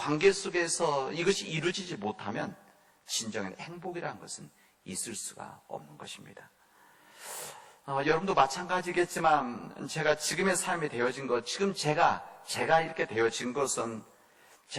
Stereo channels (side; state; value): both; identical; correlation 1.00